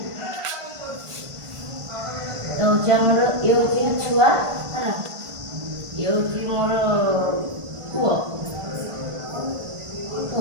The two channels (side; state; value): left; late; 1.4 ms